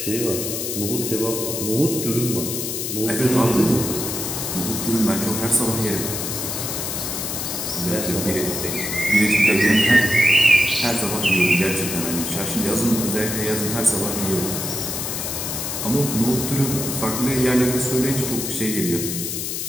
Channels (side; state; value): left; noise; hiss, 3 dB below the sound